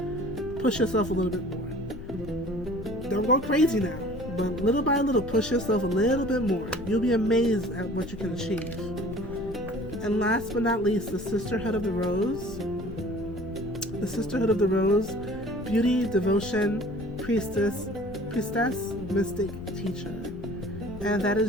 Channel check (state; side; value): noise; left; rumble, 14 dB below the sound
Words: push yourself a little bit more. Don't go crazy now, but little by little, push yourself a little bit more. You'll be amazed at what you can achieve. And last but not least, the Sisterhood of the Rose. The Sisterhood of the Rose, beauty, devotion, priestess, mystic, teacher. And that